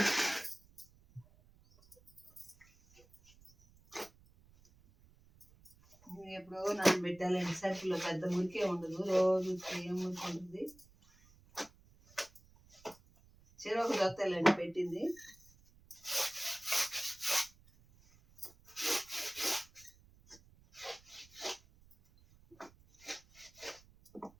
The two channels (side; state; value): right; noise; rumble, 27 dB below the sound